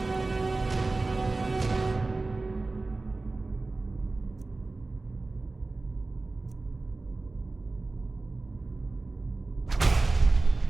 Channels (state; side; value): quieter; left; 3.4 dB